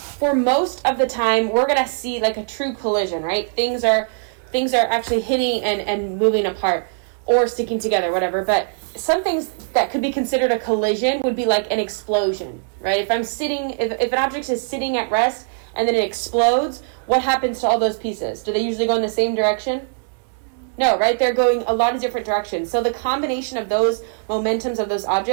most of the time, we're going to see like a true collision, right? Things are actually hitting and moving apart or sticking together, whatever. But some things that could be considered a collision would be like an explosion, right? If an object is sitting at rest and then it explodes, what happens to all those pieces? Do they usually go in the same direction? No, right? They're going a lot of different directions. So the combination of those momentums of those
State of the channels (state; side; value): silent; left; digital silence